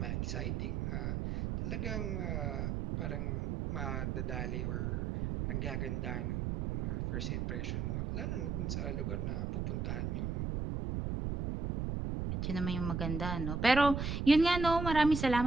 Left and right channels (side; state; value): right; noise; rumble, 1 dB below the sound